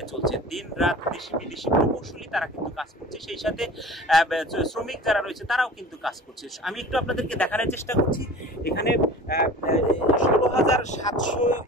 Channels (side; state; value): both; normal; correlation 0.41